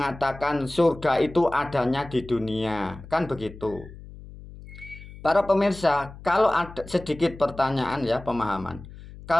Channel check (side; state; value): left; noise; hum, 16 dB below the sound